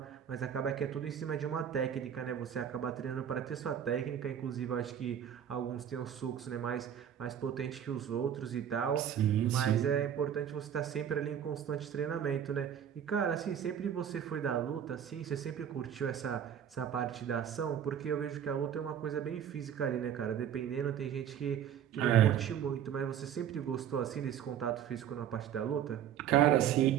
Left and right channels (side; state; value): left; quieter; 9.2 dB